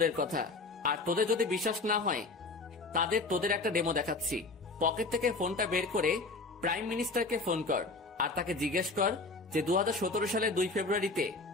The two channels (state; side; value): quieter; right; 3.5 dB